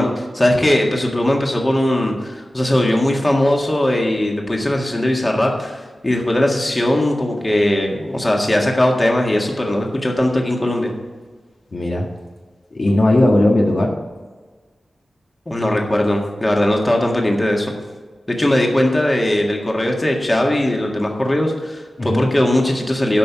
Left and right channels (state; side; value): normal; both; correlation 0.96